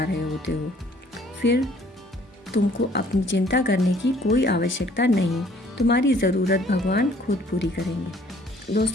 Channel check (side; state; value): both; normal; correlation 0.58